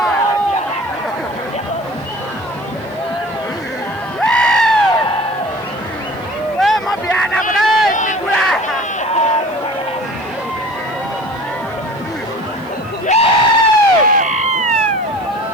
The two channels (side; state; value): left; noise; hiss, 29 dB below the sound